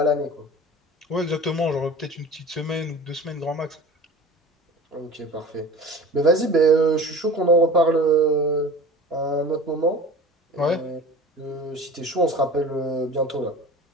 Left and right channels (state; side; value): normal; both; correlation 0.38